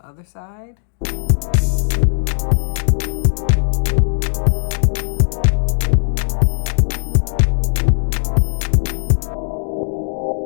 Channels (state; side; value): silent; right; digital silence